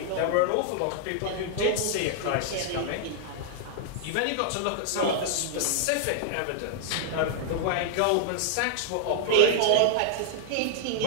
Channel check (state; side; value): different; both; correlation -0.01